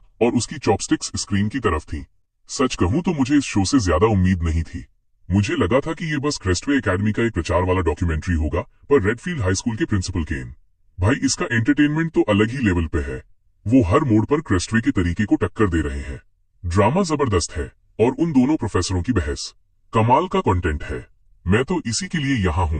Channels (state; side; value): identical; both; correlation 1.00